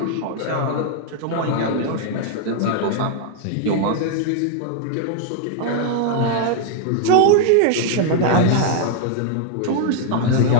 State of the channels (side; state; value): both; different; correlation 0.00